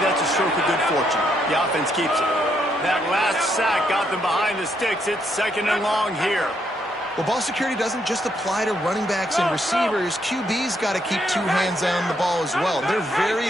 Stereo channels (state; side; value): normal; both; correlation 0.75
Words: that's a stroke of good fortune. The offense keeps it. That last sack got them behind the sticks. It's 2nd and long here. Well, ball security doesn't just apply to running backs and receivers. QB's got to keep 2 hands on the ball as well. They're